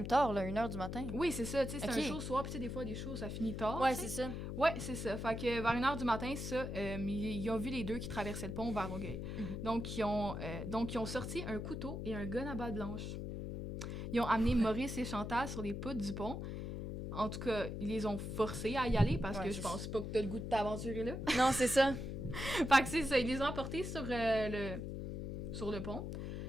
tard, là, 1h du matin. Oui, c'est ça, tu sais, c'est Ok. un show soir, puis tu sais, des fois, des shows, ça finit tard, Ouais, tu sais. c'est ça. Ouais, c'est ça. Fait que vers 1h du matin, ça, ils ont vu les deux qui traversaient le pont vers Longueuil. Mhm. Donc, ils ont sorti un couteau et un gun à balle blanche. Ils ont amené Maurice et Chantal sur les poutres du pont. En tout cas, ils les ont forcés à y aller parce Ouais, que je c'est pense pas que t'as le goût de t'aventurer là. Non, c'est ça. Fait que c'est ça, ils les ont emportés sur le pont.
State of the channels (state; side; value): noise; left; hum, 5 dB below the sound